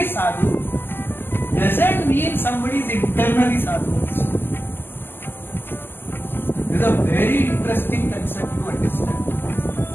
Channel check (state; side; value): late; right; 0.099 ms